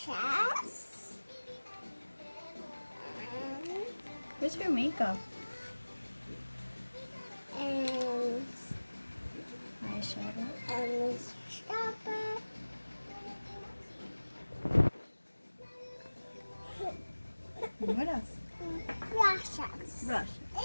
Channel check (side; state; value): both; inverted; correlation -1.00